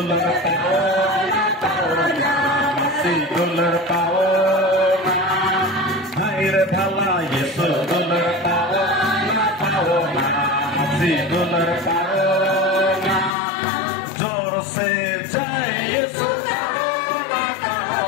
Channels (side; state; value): right; drops out; at 13.3 s